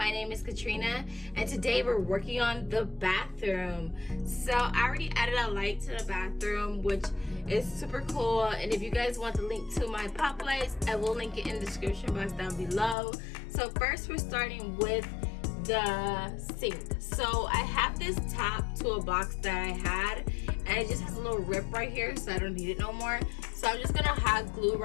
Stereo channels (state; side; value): drops out; right; at 13.0 s